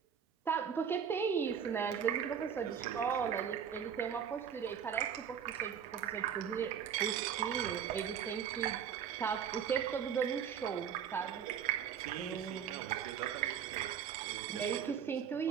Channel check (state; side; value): quieter; left; 8.1 dB